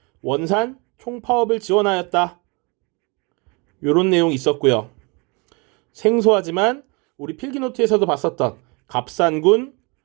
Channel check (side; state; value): left; quieter; 29.8 dB